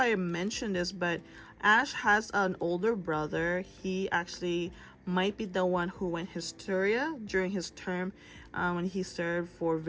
mentioned this, but Ash has an older brother. He actually might be the one who went hysteria during his term when he served for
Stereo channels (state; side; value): identical; both; correlation 1.00